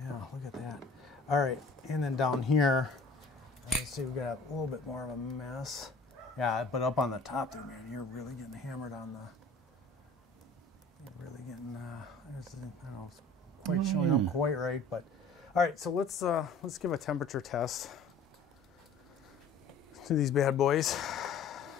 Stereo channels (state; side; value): quieter; right; 3.2 dB